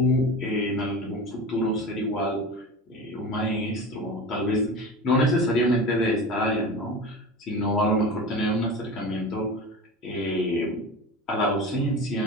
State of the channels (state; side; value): normal; both; correlation 0.31